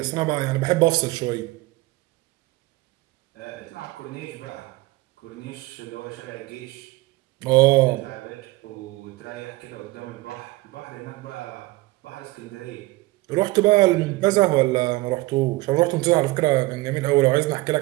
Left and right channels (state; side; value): quieter; left; 20.5 dB